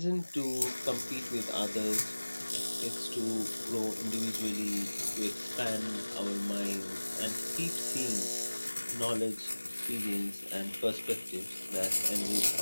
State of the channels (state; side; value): inverted; both; correlation -1.00